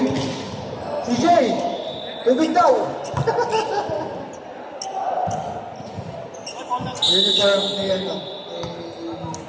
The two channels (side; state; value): both; identical; correlation 1.00